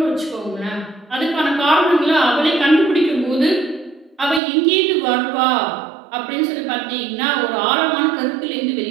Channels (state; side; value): drops out; left; at 4.4 s